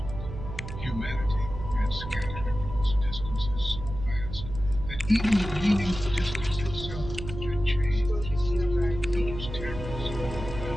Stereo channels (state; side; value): noise; right; hum, 9 dB below the sound